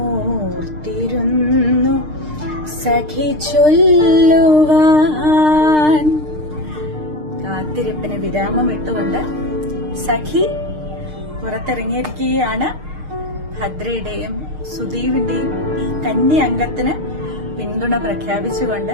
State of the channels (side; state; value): left; late; 6.6 ms